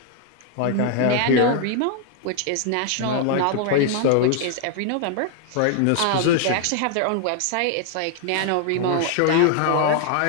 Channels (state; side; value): different; both; correlation 0.00